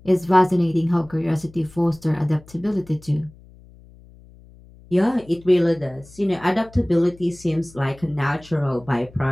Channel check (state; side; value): noise; left; hum, 24 dB below the sound